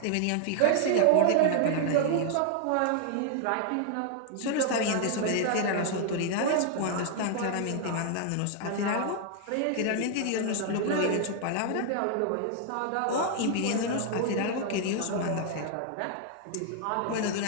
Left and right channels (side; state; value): both; different; correlation 0.00